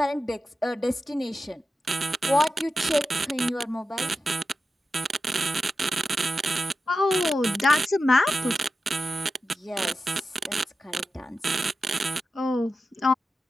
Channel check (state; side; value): normal; both; correlation 0.91